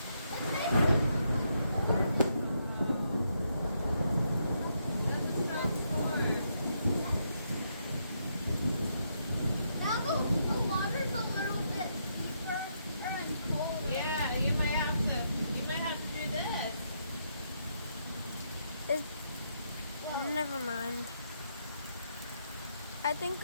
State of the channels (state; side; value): inverted; both; correlation -0.78